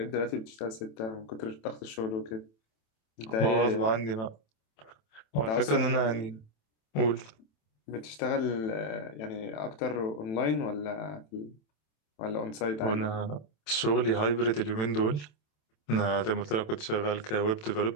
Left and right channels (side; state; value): right; late; 27 ms